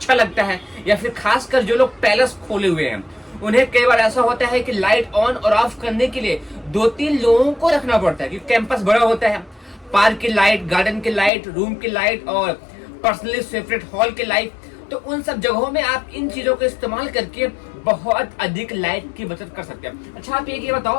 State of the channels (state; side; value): drops out; right; at 11.3 s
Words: लगता है या फिर खासकर जो लोग पैलेस खोले हुए हैं उन्हें कई बार ऐसा होता है कि लाइट ऑन और ऑफ करने के लिए 2-3 लोगों को रखना पड़ता है क्योंकि कैंपस बड़ा होता है। पार्क की लाइट, गार्डन की लाइट, रूम की लाइट और पर्सनली सेपरेट हॉल की लाइट, तो उन सब जगहों में आप इन चीजों का इस्तेमाल करके बहुत अधिक लाइट की बचत कर सकते हैं। अच्छा, आप ये